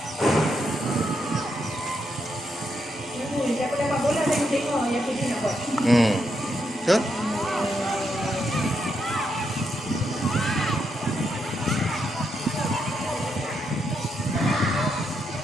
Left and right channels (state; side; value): normal; both; correlation 0.80